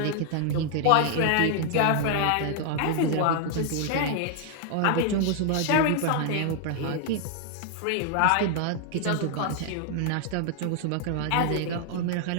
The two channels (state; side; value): different; both; correlation 0.00